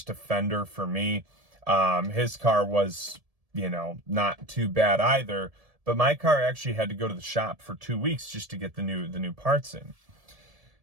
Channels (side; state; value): left; late; 1.7 ms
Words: fender for me. His car was, not too bad either. But my car actually had to go to the shop for 2 weeks just to get the new parts in.